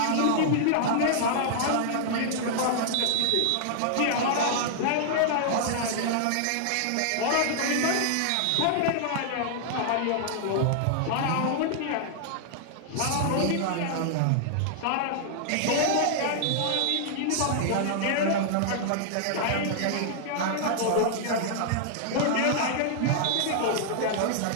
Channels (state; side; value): different; both; correlation -0.01